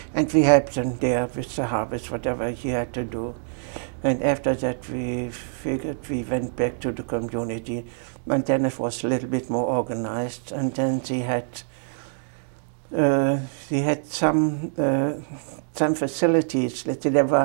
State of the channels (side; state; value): left; silent; digital silence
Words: And we helped him there with the harvest, whatever he had to do. And after that, we figured we went back to the community, and then it was a little bit more organized. And then they had some facilities. Let's say there